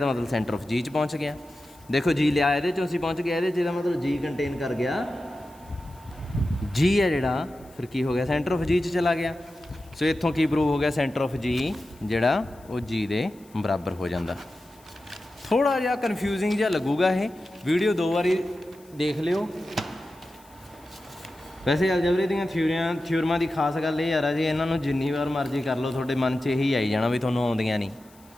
ਮਤਲਬ ਸੈਂਟਰ ਆਫ ਜੀ 'ਚ ਪਹੁੰਚ ਗਿਆ। ਦੇਖੋ ਜੀ ਲਿਆ ਇਹਦੇ 'ਚੋਂ ਅਸੀਂ ਪਹੁੰਚ ਗਿਆ ਇਹਦੇ 'ਚ, ਇਹਦਾ ਮਤਲਬ ਜੀ ਕੰਟੇਨ ਕਰ ਗਿਆ, ਜੀ ਹੈ ਜਿਹੜਾ ਫਿਰ ਕੀ ਹੋ ਗਿਆ ਸੈਂਟਰ ਆਫ ਜੀ 'ਚ ਚਲਾ ਗਿਆ। ਸੋ ਇੱਥੋਂ ਕੀ ਪ੍ਰੂਵ ਹੋ ਗਿਆ, ਸੈਂਟਰ ਆਫ ਜੀ ਜਿਹੜਾ ਉਹ ਜੀ ਦੇ ਬਰਾਬਰ ਹੋ ਜਾਂਦਾ। ਥੋੜ੍ਹਾ ਜਿਹਾ ਕਨਫਿਊਜ਼ਿੰਗ ਜਿਹਾ ਲੱਗੂਗਾ ਇਹ, ਵੀਡੀਓ 2 ਵਾਰੀ ਦੇਖ ਲਿਓ। ਵੈਸੇ ਅਲਜਬਰੇ ਦੀਆਂ ਥਿਊਰਮਾਂ ਦੀ ਖਾਸ ਗੱਲ ਇਹ ਯਾਰ ਆ ਜੀ, ਇਹਨਾਂ ਨੂੰ ਜਿੰਨੀ ਵਾਰ ਮਰਜ਼ੀ ਕਰ ਲਓ ਤੁਹਾਡੇ ਮਨ 'ਚ ਇਹੀ ਆਈ ਜਾਣਾ ਵੀ ਤੁਹਾਨੂੰ ਆਉਂਦੀਆਂ ਨਹੀਂ।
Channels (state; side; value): noise; left; hiss, 28 dB below the sound